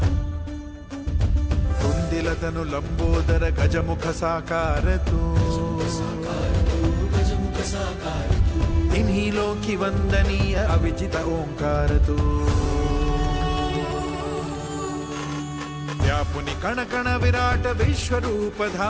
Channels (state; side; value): identical; both; correlation 1.00